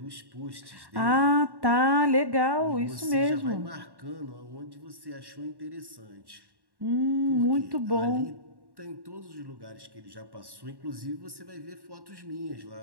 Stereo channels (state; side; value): late; left; 1.1 ms